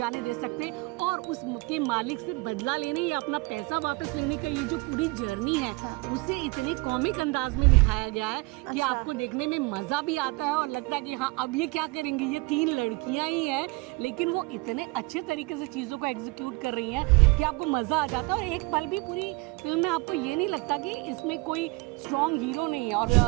दे सकते। और उसके मालिक से बदला लेने या अपना पैसा वापस लेने का ये जो पूरी जर्नी है उसे इतने कॉमिक अंदाज में दिखाया गया है कि आपको देखने में मज़ा भी आता है और लगता है कि हाँ अब ये क्या करेंगी। ये तीन लड़कियां ही हैं लेकिन वो इतने अच्छे तरीके से चीज़ों को एग्जीक्यूट कर रही हैं कि आपको मज़ा आ जाता है और एक पल भी पूरी फिल्म में आपको ये नहीं लगता कि इसमें कोई स्ट्रॉन्ग हीरो नहीं है। और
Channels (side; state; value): left; quieter; 25.8 dB